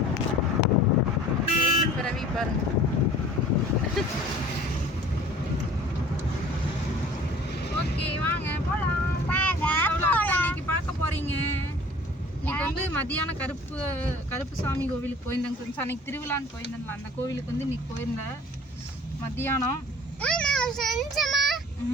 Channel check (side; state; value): both; normal; correlation 0.46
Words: பிறவி பாருங்க. ஓகே வாங்க போகலாம். இன்னைக்கு பார்க்க போகிறீங்க. இன்னைக்கு வந்து மதியானம் கருப்பு சாமி கோவிலுக்கு போயிருந்தேங்க ஃப்ரெண்ட்ஸ். அன்னைக்கு திருவிழான்னு போயிருந்தேன்ல, அந்த கோவிலுக்கு வந்து இன்னைக்கு போயிருந்தேன் மத்தியானம்.